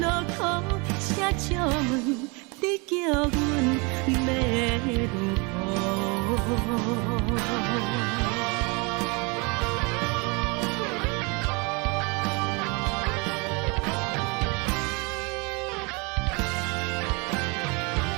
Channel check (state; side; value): quieter; left; 29.5 dB